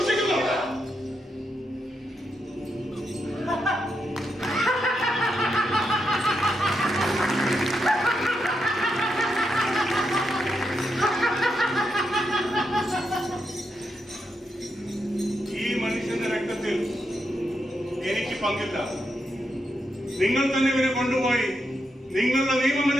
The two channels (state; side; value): normal; both; correlation 0.83